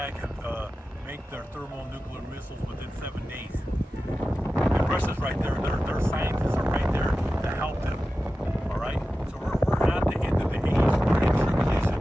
can make their thermonuclear missiles within 7 days. And Russia's right there. Their scientists are right there to help them. All right? So we're at the end of the age. We're in tribulation.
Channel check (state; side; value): normal; both; correlation 0.94